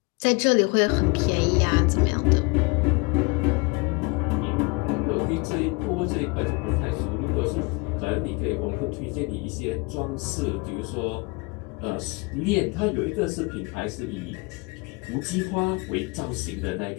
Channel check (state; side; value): quieter; right; 28.0 dB